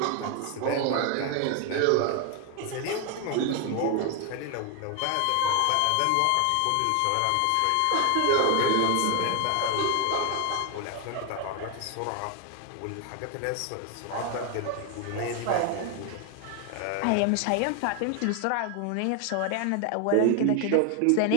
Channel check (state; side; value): different; both; correlation 0.01